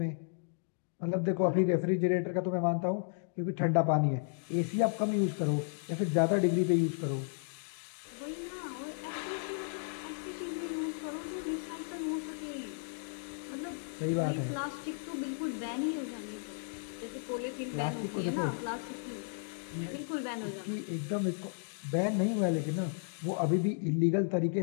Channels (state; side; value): silent; right; digital silence